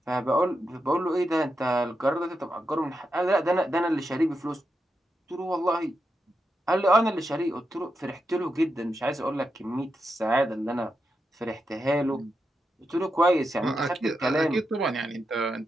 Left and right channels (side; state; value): both; normal; correlation 0.86